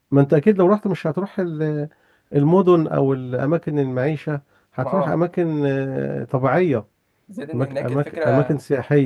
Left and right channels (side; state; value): both; identical; correlation 1.00